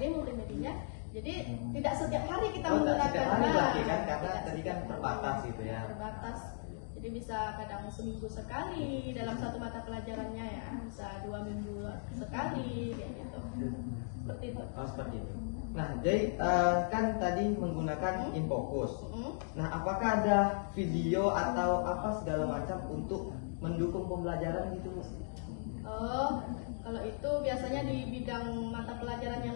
multimedianya, jadi tidak setiap hari kita menggunakan. Setiap hari berarti kan, karena tadi kan terbatas gitu ya. Terbatas. Jadi bisa kadang seminggu sekali dalam satu mata pelajarannya ya, bisa 2 minggu sekali kayak gitu. Seperti itu. Oh, seperti itu. Nah, jadi kan tadi menggunakan Infokus. Nah, apakah ada video atau apa segala macam untuk mendukung pembelajaran gitu, Bu? Oh, kalau itu biasanya di bidang mata pelajaran yang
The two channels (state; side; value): silent; right; digital silence